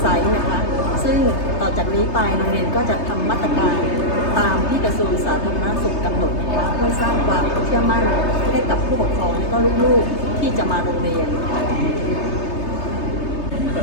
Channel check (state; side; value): late; right; 3.3 ms